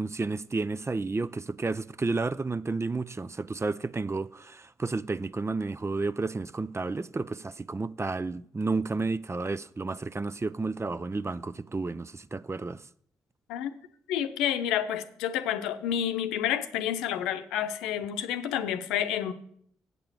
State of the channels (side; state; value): both; normal; correlation 0.62